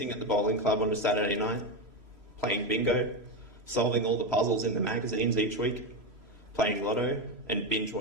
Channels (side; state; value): left; late; 3.0 ms